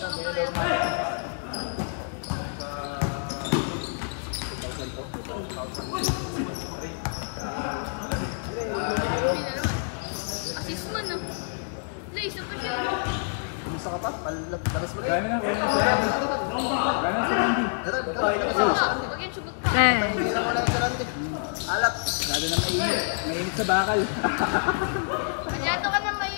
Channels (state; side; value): silent; right; digital silence